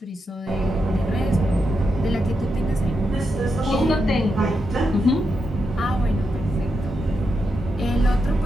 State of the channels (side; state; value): both; normal; correlation 0.85